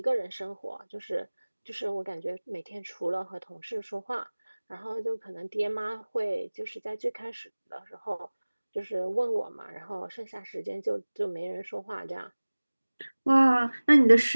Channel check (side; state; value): both; inverted; correlation -1.00